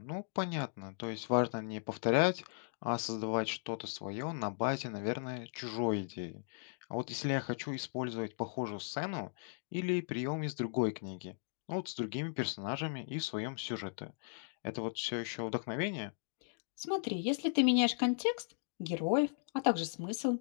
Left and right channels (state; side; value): silent; right; digital silence